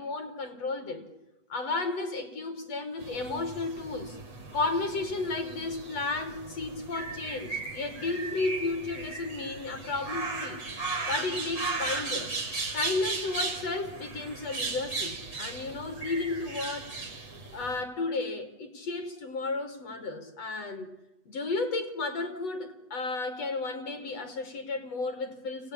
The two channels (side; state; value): right; late; 8.1 ms